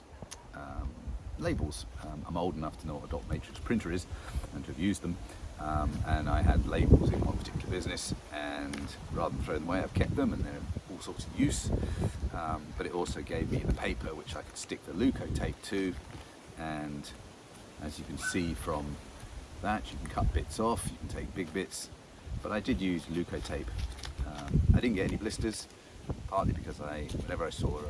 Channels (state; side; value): identical; both; correlation 1.00